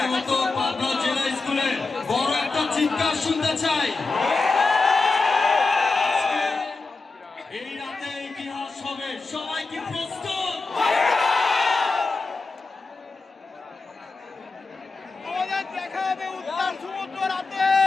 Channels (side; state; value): right; quieter; 3.9 dB